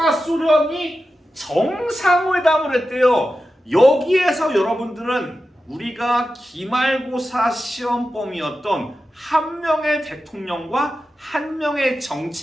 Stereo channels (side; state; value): both; normal; correlation 0.92